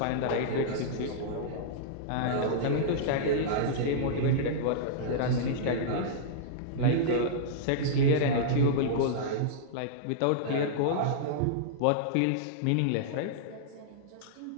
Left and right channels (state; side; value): different; both; correlation -0.02